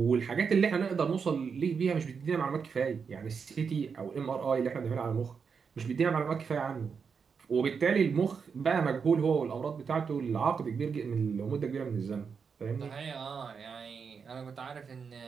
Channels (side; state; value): left; quieter; 6.0 dB